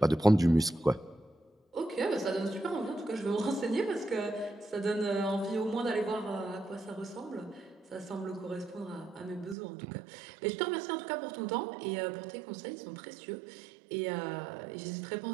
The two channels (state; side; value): drops out; left; at 9.6 s